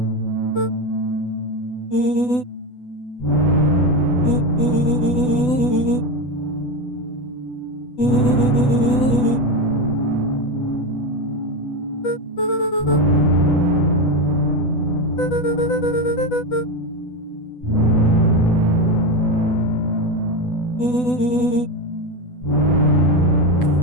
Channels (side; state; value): right; late; 8.1 ms